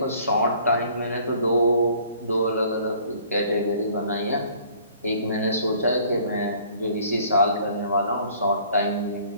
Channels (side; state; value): both; inverted; correlation -0.55